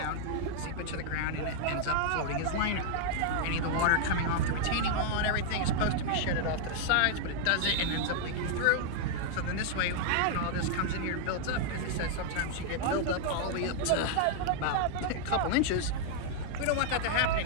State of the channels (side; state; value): both; different; correlation -0.01